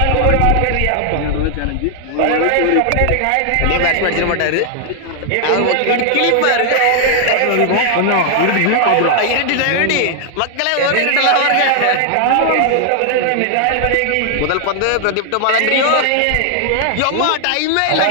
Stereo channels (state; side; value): different; both; correlation 0.00